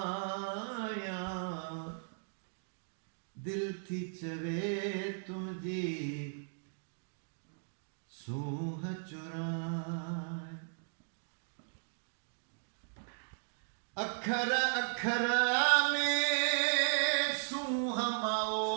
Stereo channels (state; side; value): silent; left; digital silence